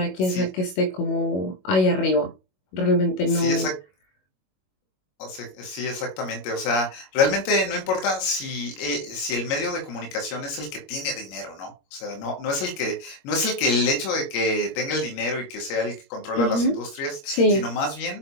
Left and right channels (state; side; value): late; right; 21 ms